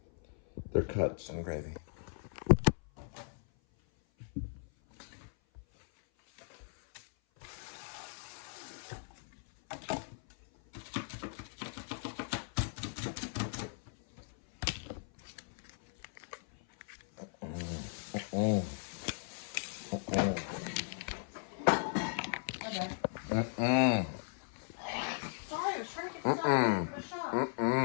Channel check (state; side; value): silent; right; 53 dB below the other